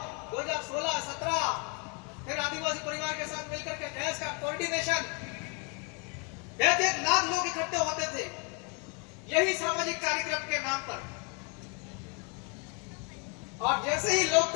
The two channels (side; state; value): right; quieter; 34.8 dB